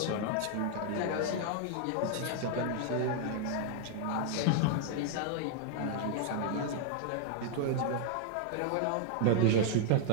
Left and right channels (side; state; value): both; different; correlation 0.00